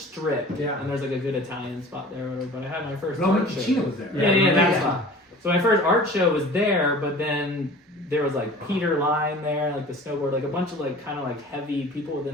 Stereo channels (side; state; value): both; normal; correlation 0.43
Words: Yeah. And there's like a good Italian spot there. But I had my first Roman art show. Ticino was there. Yeah, that spot. So my first art show was there, but then there was like Peter Line there, like the snowboard, like a bunch of like kind of like heavy people